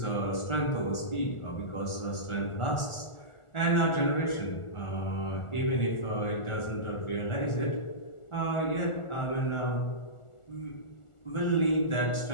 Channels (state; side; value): late; right; 1.4 ms